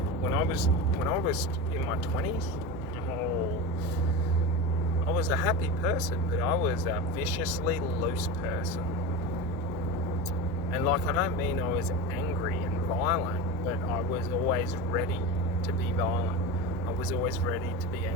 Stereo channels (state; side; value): normal; both; correlation 0.25